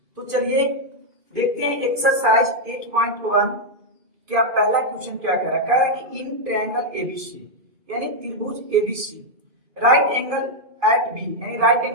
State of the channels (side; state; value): left; late; 2.5 ms